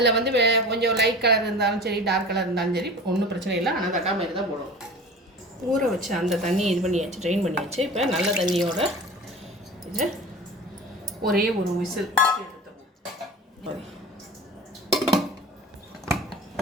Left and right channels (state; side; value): normal; both; correlation 0.37